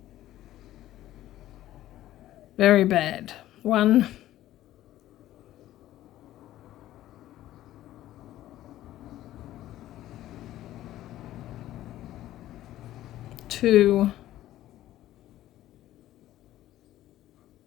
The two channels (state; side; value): quieter; right; 14.1 dB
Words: Very bad. 1, 2,